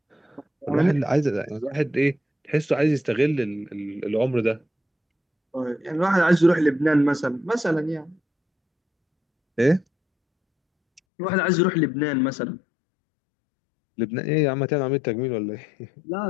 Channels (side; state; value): right; drops out; at 11.0 s